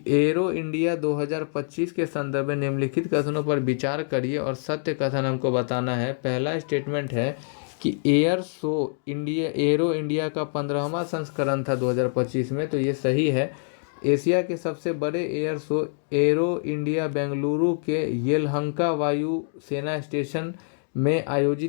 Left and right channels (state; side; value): silent; right; digital silence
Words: एरो इंडिया 2025 के संदर्भ में निम्नलिखित कथनों पर विचार करिए और सत्य कथन हमको बताना है। पहला स्टेटमेंट है कि एरो इंडिया का 15वां संस्करण था 2025 में, तो ये सही है। एशिया के सबसे बड़े air show arrow India Bengaluru के येलहंका वायु सेना स्टेशन में